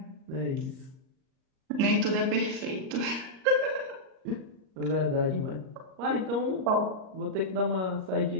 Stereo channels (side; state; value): left; late; 38 ms